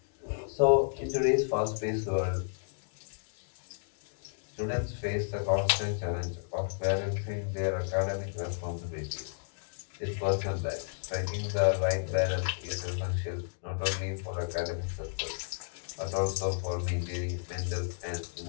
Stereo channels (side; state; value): right; silent; digital silence